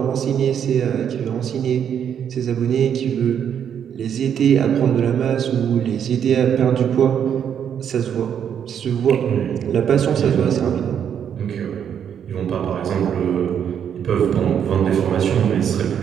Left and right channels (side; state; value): left; quieter; 8.6 dB